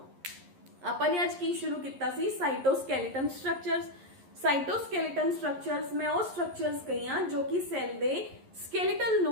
आपने आज की शुरू किया सी साइटोस्केलेटन स्ट्रक्चर्स। साइटोस्केलेटन स्ट्रक्चर्स मैं वो स्ट्रक्चर्स कही हाँ जो कि सैल दे स्केलेटल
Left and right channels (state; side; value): late; left; 11 ms